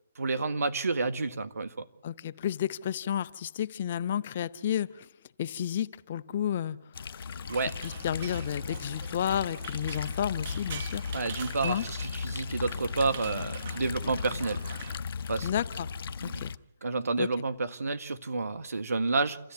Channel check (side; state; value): both; inverted; correlation -0.70